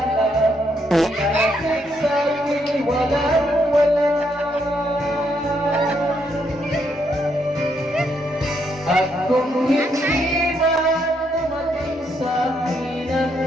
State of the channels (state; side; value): normal; both; correlation 0.75